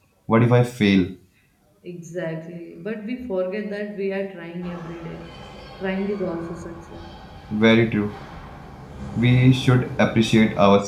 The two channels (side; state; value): both; identical; correlation 1.00